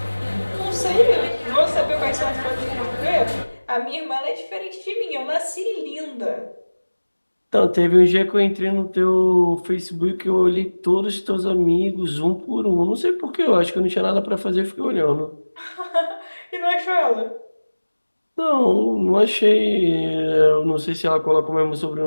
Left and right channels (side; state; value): both; inverted; correlation -1.00